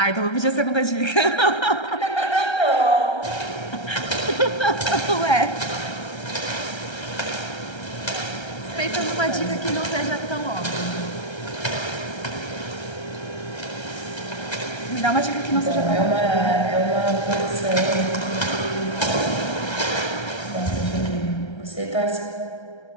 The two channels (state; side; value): late; right; 1.3 ms